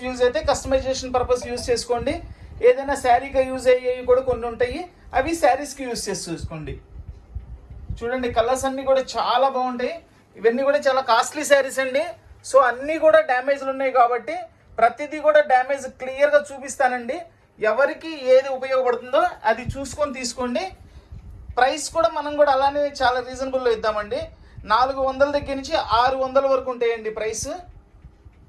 యూజ్ అయితే కస్టమైజేషన్ పర్పస్ యూజ్ చేసుకోండి. ఏదైనా శారీగా యూజ్ అయ్యేవి కూడా కొన్ని ఉంటాయి, అవి శారీస్కి యూజ్ చేసి చూసుకోండి. చూడండి, కలర్స్ అన్నీ కూడా చాలా బాగుంటాయి. ఇవన్నీ కూడా చాలా కాస్ట్లీ శారీస్ అండి. సో అన్నీ కూడా డ్యామేజ్లు ఉన్నాయి కాబట్టి ప్రతిదీ కూడా డ్యామేజ్ క్లియర్గా చూపిస్తానండి. ఎవరికి ఏది ఉపయోగపడుతుందో అది చూసుకొని తీసుకోండి. ప్రైస్ కూడా మనం కూడా అలానే చాలా రీజనబుల్లో ఇద్దామండి. 400 దగ్గర నుంచి 600 వరకు ఉంటాయండి ప్రైస్.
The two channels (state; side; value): identical; both; correlation 1.00